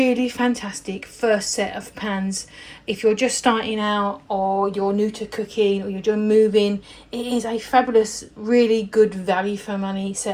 fantastic first set of pans if you're just starting out or you're new to cooking or you're just moving. It is a fabulous, really good value for money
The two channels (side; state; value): both; identical; correlation 1.00